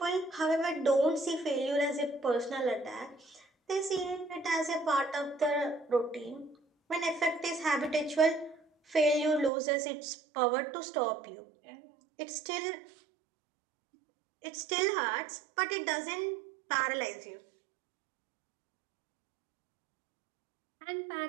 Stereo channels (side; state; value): left; drops out; at 9.5 s